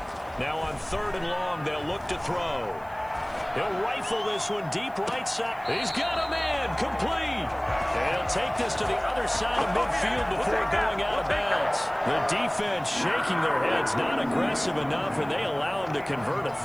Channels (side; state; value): right; noise; hiss, 28 dB below the sound